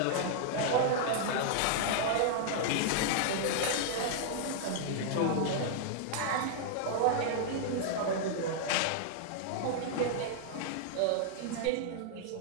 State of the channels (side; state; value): both; different; correlation -0.01